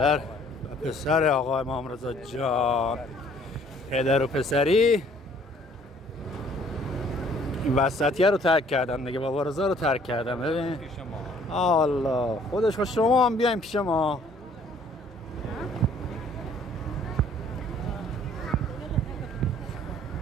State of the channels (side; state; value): both; normal; correlation 0.58